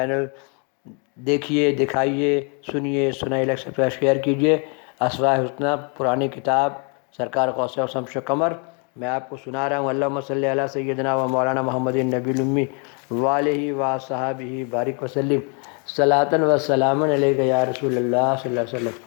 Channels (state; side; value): quieter; right; 37.1 dB